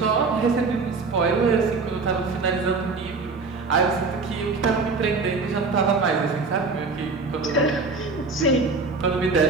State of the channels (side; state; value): left; quieter; 4.2 dB